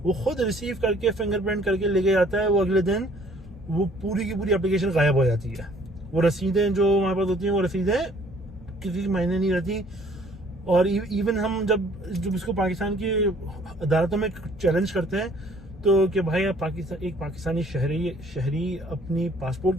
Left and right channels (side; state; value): both; normal; correlation 0.58